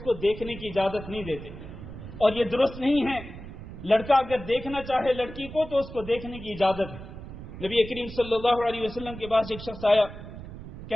کو دیکھنے کی اجازت نہیں دیتے، اور یہ درست نہیں ہے. لڑکا اگر دیکھنا چاہے لڑکی کو تو اس کو دیکھنے کی اجازت ہے. نبی کریم صلی اللہ علیہ وسلم کے پاس ایک شخص آیا،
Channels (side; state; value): right; noise; rumble, 12 dB below the sound